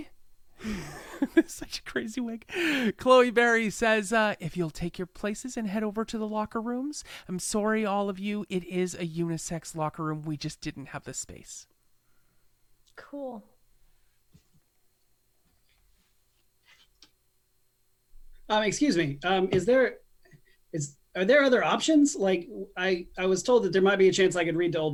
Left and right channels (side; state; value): both; identical; correlation 1.00